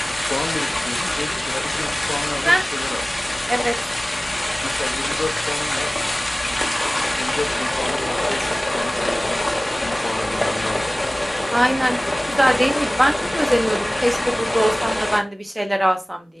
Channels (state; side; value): normal; both; correlation 0.98